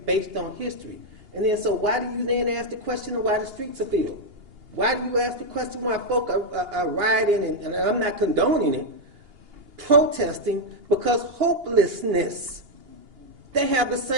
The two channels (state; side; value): late; left; 2.8 ms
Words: based on history. And then, so why do you then ask the question of why the streets are filled? Why do you ask the question why folk are rioting, and I'm not condoning it, protesting because hopelessness? They have the